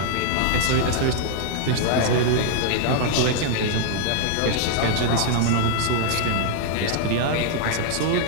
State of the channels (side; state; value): both; different; correlation -0.01